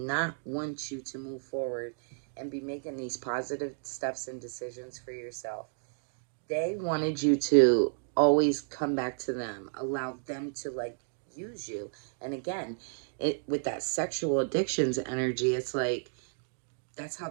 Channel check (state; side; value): silent; left; digital silence